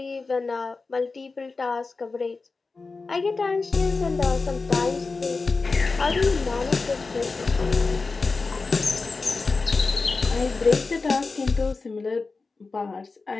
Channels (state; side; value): quieter; right; 4.0 dB